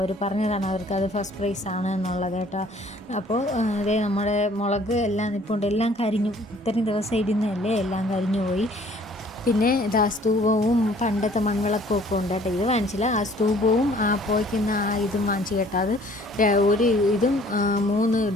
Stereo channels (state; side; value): normal; both; correlation 0.56